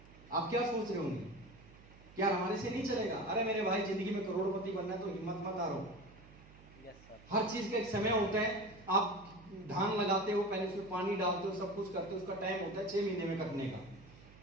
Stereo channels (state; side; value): noise; right; hum, 22 dB below the sound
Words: आप क्या सोच रहे होंगे, क्या हमारे से नहीं चलेगा? अरे मेरे भाई, जिंदगी में करोड़पति बनना है तो हिम्मत मत हारो। हर चीज का एक समय होता है। आप धान लगाते हो, पहले उसमें पानी डालते हो, सब कुछ करते हो, उसका टाइम होता है 6 महीने में कटने का।